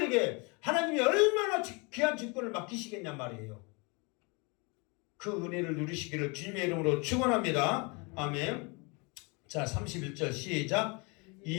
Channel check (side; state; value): right; quieter; 30.0 dB